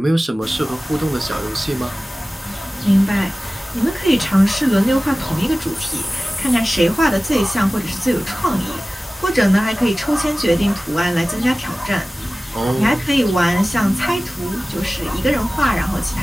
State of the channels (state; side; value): normal; both; correlation 0.97